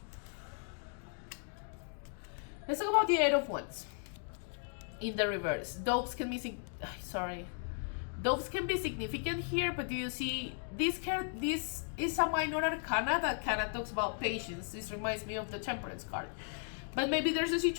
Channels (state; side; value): silent; right; 54 dB below the other